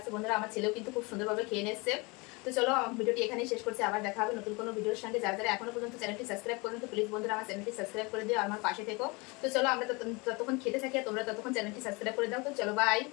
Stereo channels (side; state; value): right; quieter; 27.2 dB